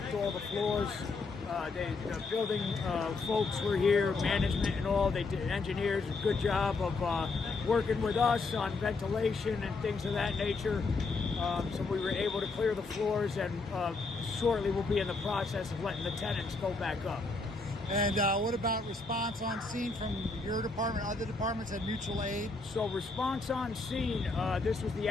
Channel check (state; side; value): quieter; right; 3.8 dB